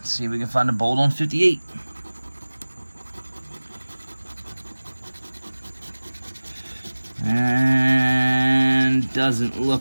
see if we can find a bolt on 58. And doesn't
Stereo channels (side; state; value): both; inverted; correlation -1.00